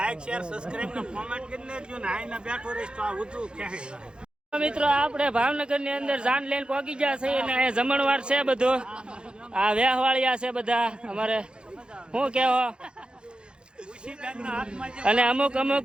શેર સબસ્ક્રાઇબ ને કોમેન્ટ કરી લેજો ને. આઈને બેઠો રહીશ તો આ વધુ ક્યાંય મિત્રો આપણે ભાવનગર ની અંદર જાન લઈને પહોંચી ગયા છે અને અહીંયા જમણવાર છે બધું. આ વેહવાળિયા છે બધા અમારે. શું કહેવો? અને અમુક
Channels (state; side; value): late; left; 0.052 ms